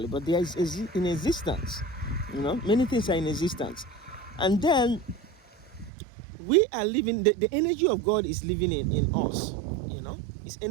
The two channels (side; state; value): left; drops out; at 5.9 s